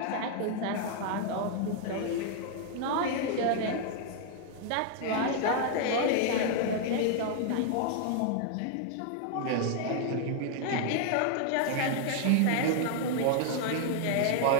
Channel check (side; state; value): both; different; correlation 0.00